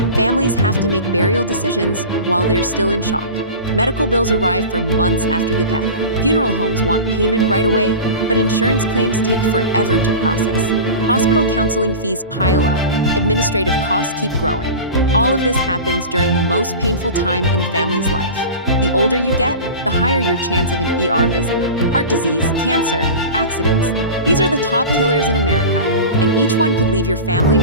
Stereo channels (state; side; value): inverted; both; correlation -0.31